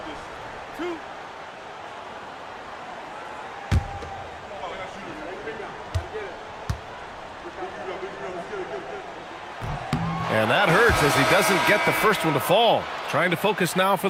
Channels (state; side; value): identical; both; correlation 1.00